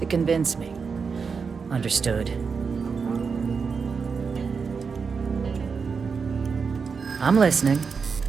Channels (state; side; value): quieter; left; 5.5 dB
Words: convince me. Understood. I'm listening.